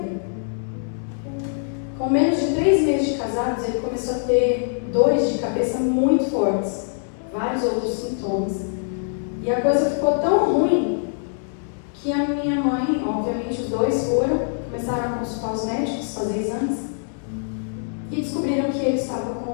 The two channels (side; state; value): right; silent; 63 dB below the other